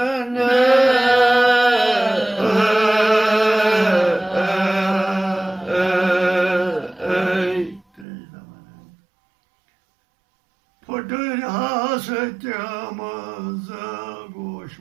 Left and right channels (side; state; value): left; drops out; at 8.1 s